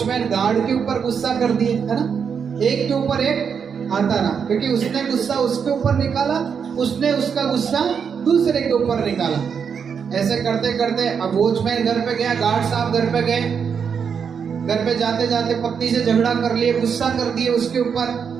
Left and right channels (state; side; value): quieter; left; 6.7 dB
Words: गार्ड के ऊपर गुस्सा कर दिए, है ना, एक के ऊपर एक आता रहा, क्योंकि उसने गुस्सा उसके ऊपर निकाला, उसने उसका गुस्सा दूसरे के ऊपर निकाला। ऐसे करते करते अब वॉचमैन घर पे गया, गार्ड साहब घर पे गए, घर पे जाते जाते पत्नी से झगड़ा कर लिए, गुस्सा कर दिए उसके ऊपर।